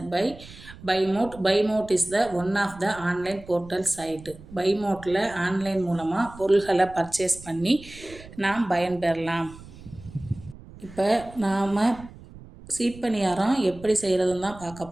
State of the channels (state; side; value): noise; right; rumble, 18 dB below the sound